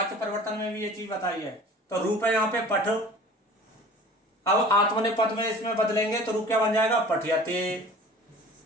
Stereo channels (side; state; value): both; normal; correlation 0.44